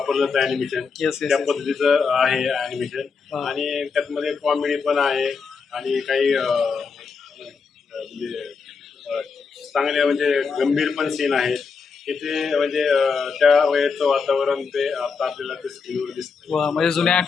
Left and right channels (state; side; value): quieter; right; 5.3 dB